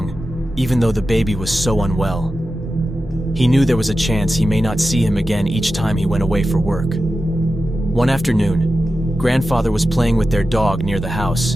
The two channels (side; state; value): both; normal; correlation 0.92